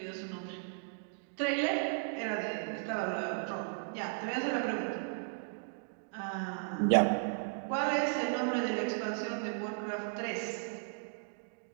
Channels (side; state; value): left; silent; digital silence